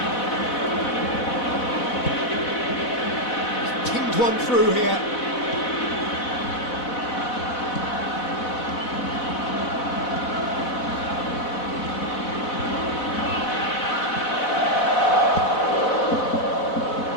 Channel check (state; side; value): late; right; 4.1 ms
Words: He's pinged one through here.